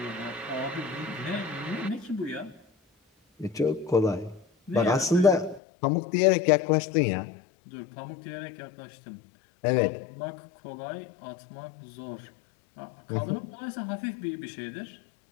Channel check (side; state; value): right; drops out; at 5.6 s